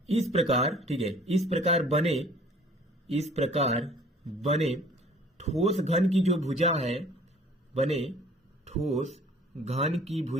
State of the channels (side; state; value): both; normal; correlation 0.52